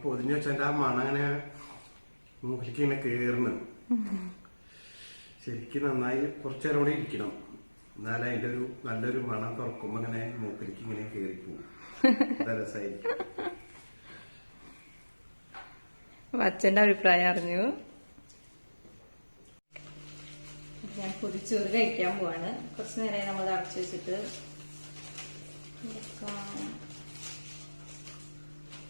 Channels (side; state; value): both; inverted; correlation -1.00